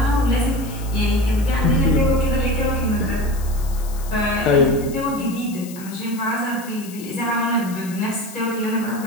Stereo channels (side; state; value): left; noise; hiss, 17 dB below the sound